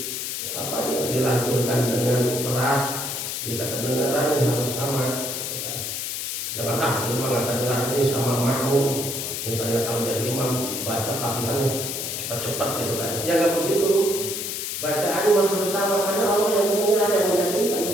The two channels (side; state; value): left; noise; hiss, 4 dB below the sound